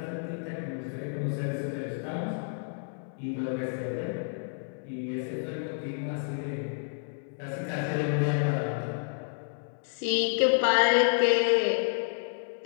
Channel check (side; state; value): right; silent; digital silence